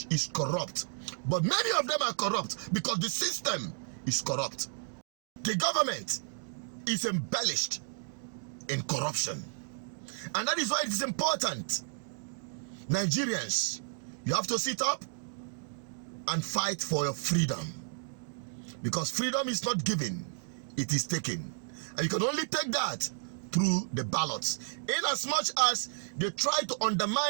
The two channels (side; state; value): left; silent; digital silence